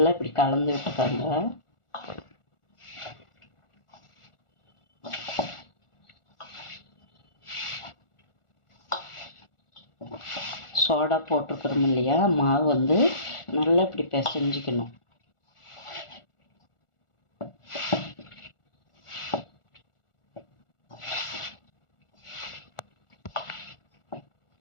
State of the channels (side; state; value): right; late; 1.4 ms